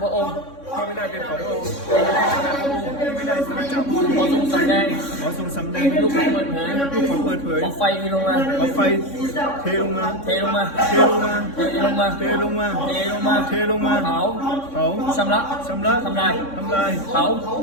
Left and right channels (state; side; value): late; right; 3.6 ms